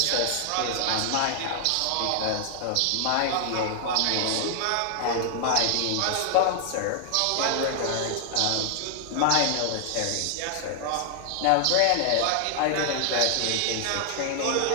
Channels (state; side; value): different; both; correlation 0.00